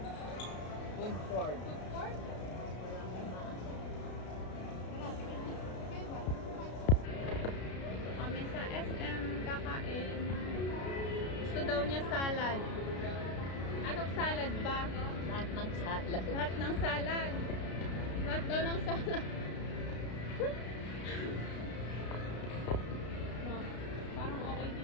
Food court. Food court? Kami sa SM kakain. Gusto daw niya salad. Anong salad ba? Lahat ng salad. Lahat ng salad. Lahat daw ng salad. No, parang okay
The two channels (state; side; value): late; right; 33 ms